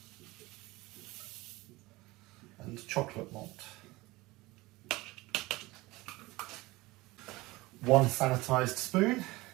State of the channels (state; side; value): quieter; left; 21.1 dB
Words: and chocolate malt. 1 sanitised spoon.